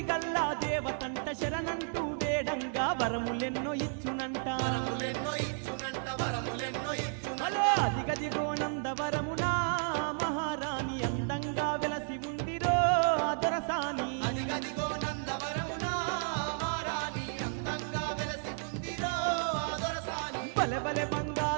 దేవతంట శరణంటూ వేడంగా వరములెన్నో ఇచ్చునంట వరములెన్నో ఇచ్చునంట వరములెన్నో ఇచ్చునంట హలో అదిగదిగో నందవరమునా మహారాణి అందంగా వెలసి ఉందిరో అదొరసాని అదిగదిగో నందవరమునా మారాణి అందంగా వెలసి ఉందిరో ఆదరసాని బలె బలె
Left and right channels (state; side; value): silent; left; 56 dB below the other